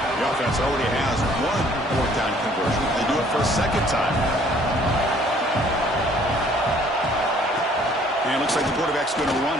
The offense already has one fourth down conversion. They do it for a second time. And it looks like the quarterback's going to run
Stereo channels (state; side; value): normal; both; correlation 0.59